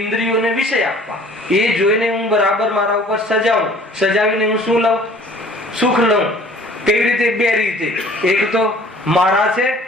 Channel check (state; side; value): normal; both; correlation 0.51